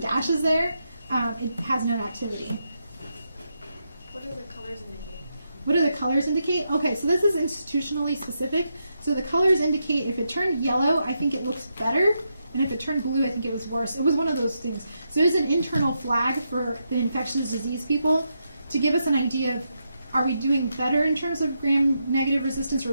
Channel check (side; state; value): both; inverted; correlation -0.83